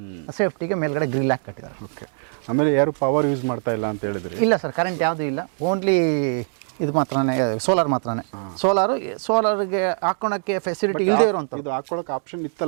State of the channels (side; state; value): left; silent; digital silence